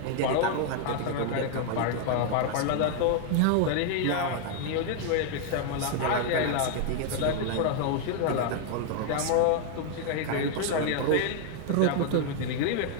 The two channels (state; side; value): different; both; correlation 0.00